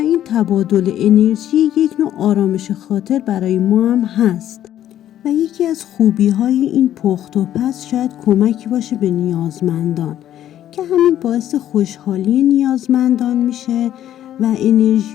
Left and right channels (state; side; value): quieter; right; 11.7 dB